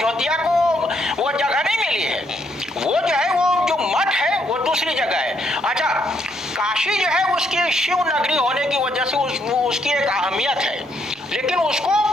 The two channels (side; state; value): both; normal; correlation 0.73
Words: को वो जगह नहीं मिली है, वो जो है वो जो मठ है वो दूसरी जगह है। अच्छा, काशी जो है उसकी शिव नगरी होने की वजह से उसकी एक अहमियत है, लेकिन उसको